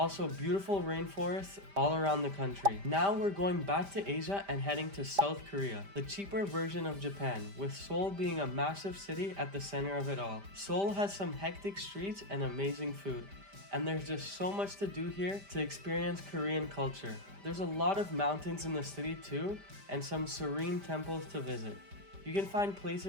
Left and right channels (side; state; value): left; late; 5.0 ms